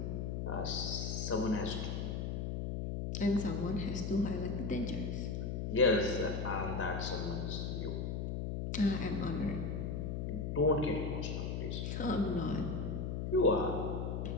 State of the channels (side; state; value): left; noise; hum, 2 dB below the sound